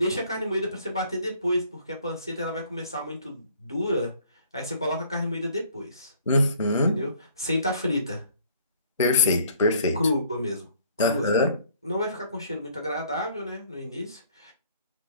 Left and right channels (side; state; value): both; inverted; correlation -0.58